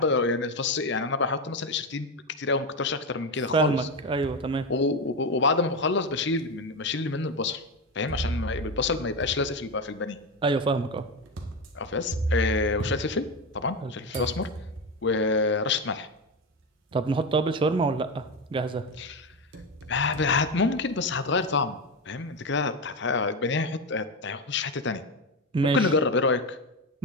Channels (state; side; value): normal; both; correlation 0.15